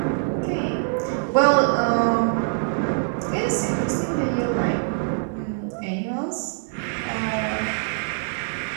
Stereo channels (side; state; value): left; silent; digital silence